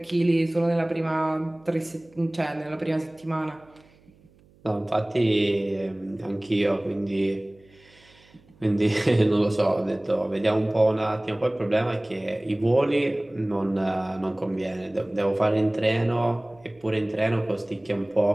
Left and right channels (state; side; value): noise; right; hum, 29 dB below the sound